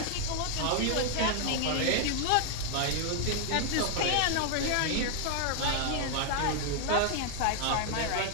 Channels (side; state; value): both; different; correlation 0.00